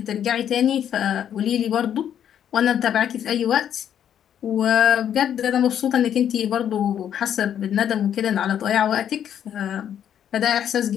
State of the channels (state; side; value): quieter; right; 9.6 dB